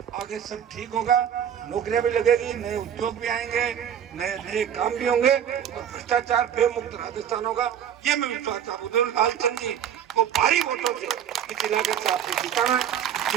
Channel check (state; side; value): quieter; left; 9.2 dB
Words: आगे सब ठीक होगा, नौकरियां भी लगेगी, नए उद्योग भी आएंगे, नए नए काम भी होंगे और भ्रष्टाचार बेमुक्त राजस्थान होगा। ये मैं विश्वास आप लालचंद जी को भारी वोटों से इस इलाके से आपको जिताना है।